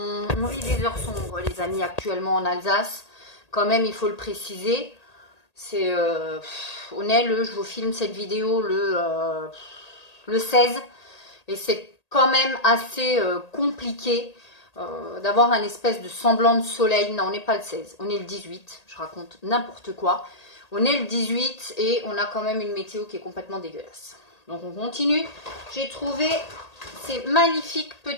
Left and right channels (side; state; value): right; late; 1.8 ms